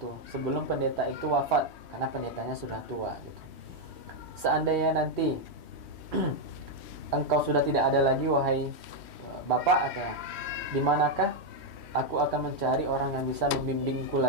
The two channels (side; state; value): left; late; 3.1 ms